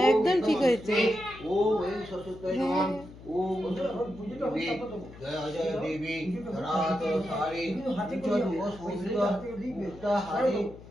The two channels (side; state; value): left; noise; hum, 18 dB below the sound